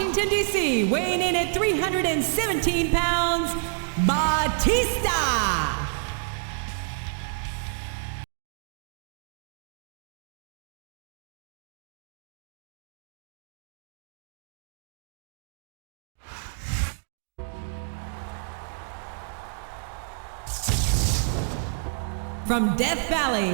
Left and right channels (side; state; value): left; silent; digital silence